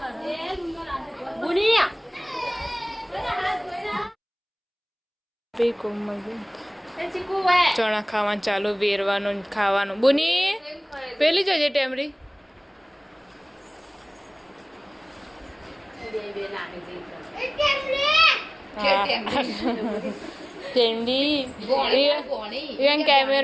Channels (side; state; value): both; identical; correlation 1.00